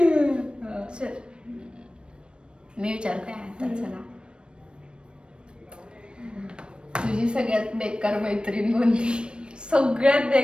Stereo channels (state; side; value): late; left; 0.055 ms